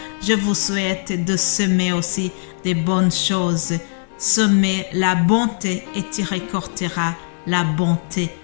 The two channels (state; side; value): silent; right; 66 dB below the other